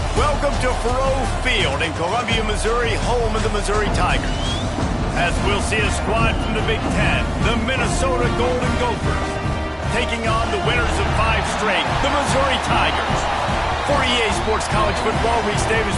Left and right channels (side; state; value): both; identical; correlation 1.00